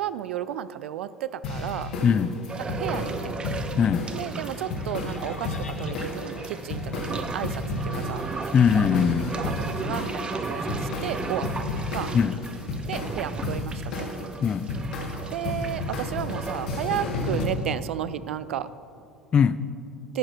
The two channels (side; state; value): both; normal; correlation 0.48